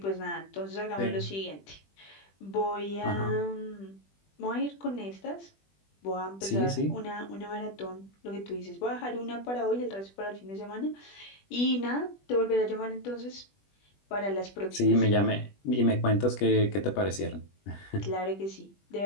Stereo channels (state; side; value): late; right; 20 ms